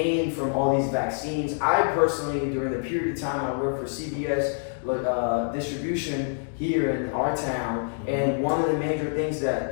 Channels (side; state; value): right; silent; digital silence